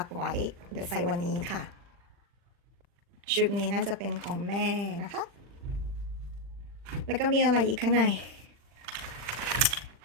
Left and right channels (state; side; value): late; left; 40 ms